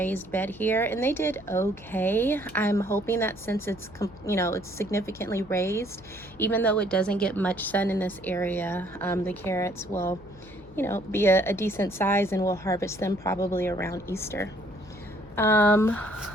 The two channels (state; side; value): noise; left; hum, 22 dB below the sound